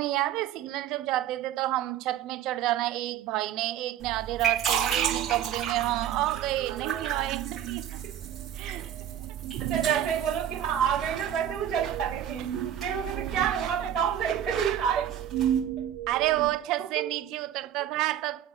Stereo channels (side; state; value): left; quieter; 10.6 dB